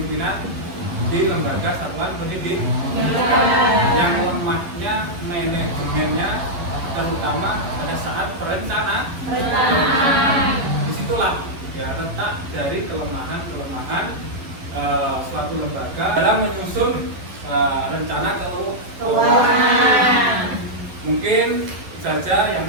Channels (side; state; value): left; late; 11 ms